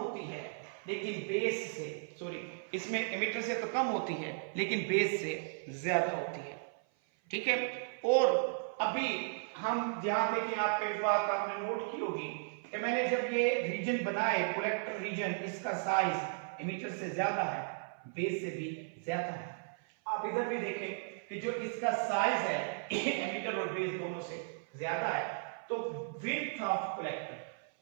है लेकिन बेस से, इसमें एमिटर से तो कम होती है लेकिन बेस से ज्यादा होती है, ठीक है। और अभी हम ध्यान दें कि आपको एक बात आपने नोट की होगी कि मैंने जब ये रीजन बनाए, कलेक्टर रीजन, इसका साइज एमिटर से ज्यादा है, बेस से भी ज्यादा है। आप इधर भी देखें कि जो इसका साइज है एमिटर और बेस दोनों से ज्यादा है, तो width of collector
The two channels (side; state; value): left; silent; 54 dB below the other